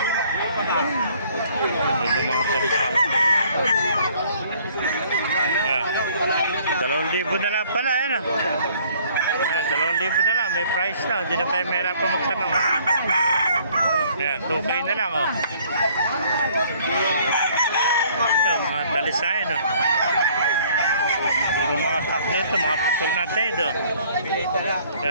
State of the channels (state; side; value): inverted; both; correlation -0.58